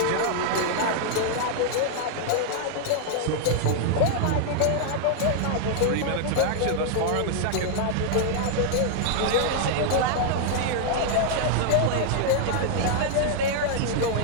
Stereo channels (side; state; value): both; different; correlation 0.00